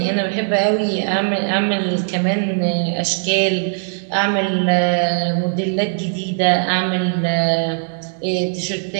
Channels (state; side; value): silent; left; digital silence